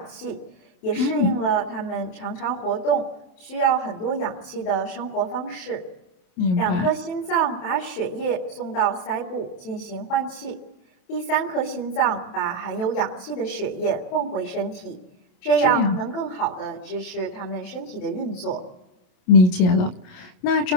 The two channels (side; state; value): right; late; 27 ms